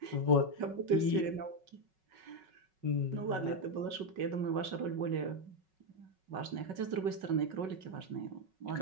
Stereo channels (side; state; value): left; late; 5.4 ms